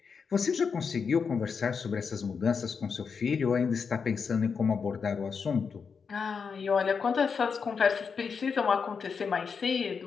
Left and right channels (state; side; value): quieter; right; 5.8 dB